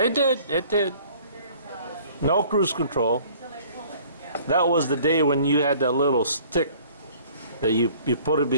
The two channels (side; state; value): both; inverted; correlation -0.53